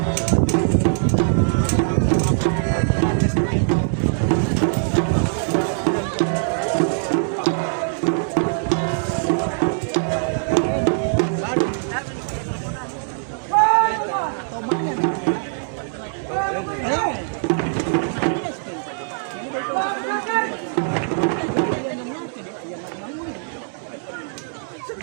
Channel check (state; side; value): silent; left; 64 dB below the other